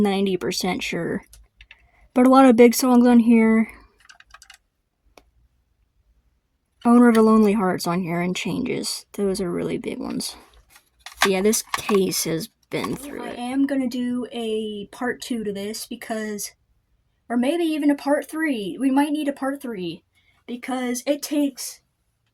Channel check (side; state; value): both; identical; correlation 1.00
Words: sure. But a lot of big songs on here. Owner of a Lonely Heart's on here, and Changes. Those are really big ones. But yeah, this case has been through it. I am gonna do a part 2 to this because, or maybe even a part 3. We might need a part 3 because it takes